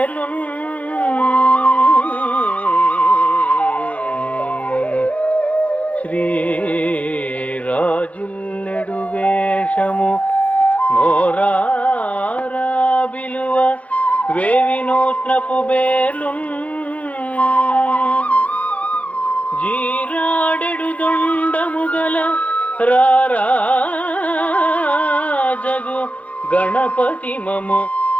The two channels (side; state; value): right; late; 0.067 ms